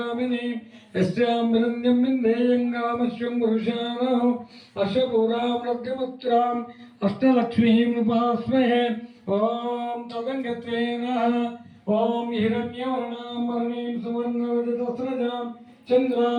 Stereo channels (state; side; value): identical; both; correlation 1.00